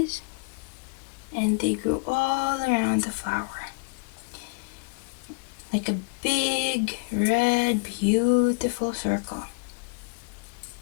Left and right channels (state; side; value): quieter; right; 32.8 dB